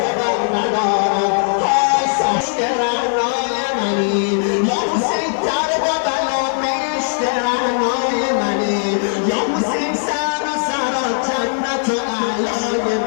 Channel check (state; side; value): silent; right; 67 dB below the other